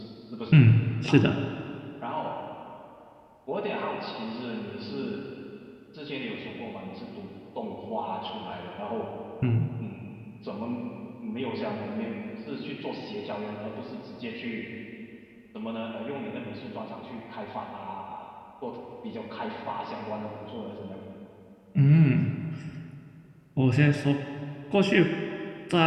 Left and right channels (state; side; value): identical; both; correlation 1.00